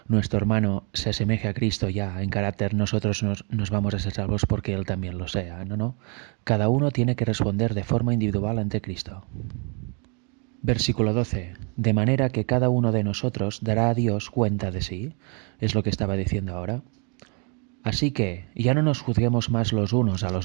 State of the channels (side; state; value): left; quieter; 36.1 dB